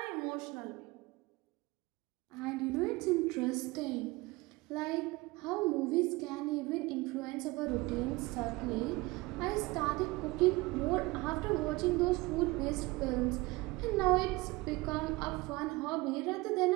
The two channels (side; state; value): left; quieter; 22.3 dB